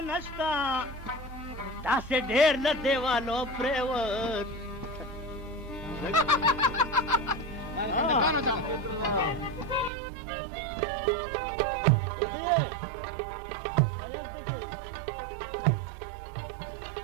नस्ता तासे ढेर न देवालो प्रेवत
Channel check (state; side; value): drops out; left; at 9.9 s